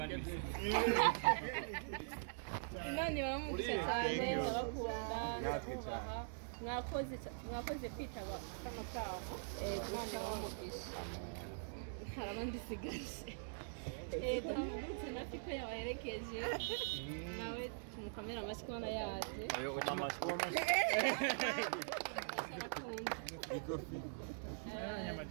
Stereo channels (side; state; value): left; silent; digital silence